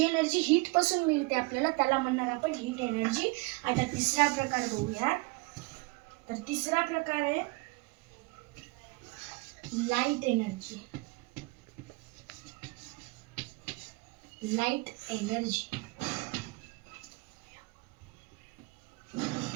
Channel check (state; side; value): quieter; left; 26.0 dB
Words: एनर्जी हीट पासून मिळते आपल्याला त्याला म्हणणार आपण हीट एनर्जी. आता तिसरा प्रकार बघूया. तर तिसरा प्रकार आहे light energy. Light energy